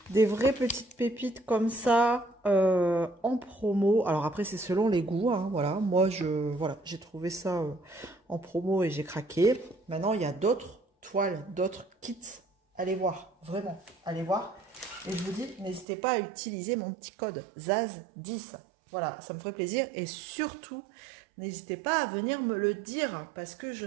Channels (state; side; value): drops out; left; at 15.9 s